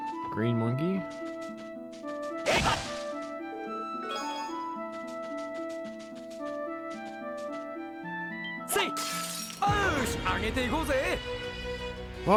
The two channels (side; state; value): both; identical; correlation 1.00